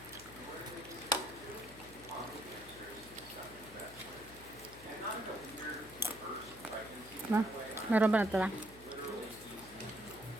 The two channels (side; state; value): left; noise; hum, 19 dB below the sound